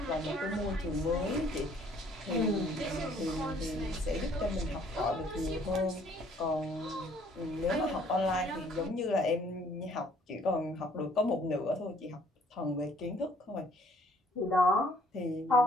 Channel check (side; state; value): both; normal; correlation 0.61